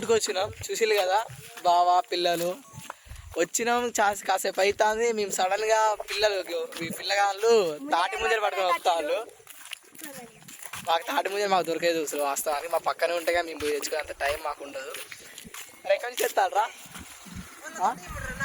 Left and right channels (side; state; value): both; identical; correlation 1.00